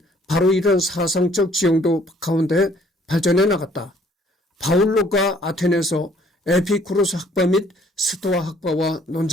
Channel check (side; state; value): both; normal; correlation 0.60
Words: 바로 이런 사상적 지형도 가운데 발전해 나갔다. 바울로가 아테네에서 에피쿠로스 학파 및 스토아 학파와